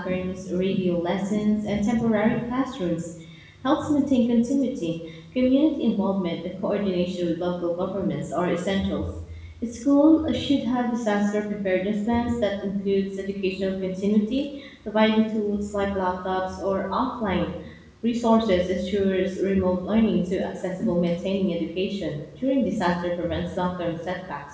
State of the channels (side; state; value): both; identical; correlation 1.00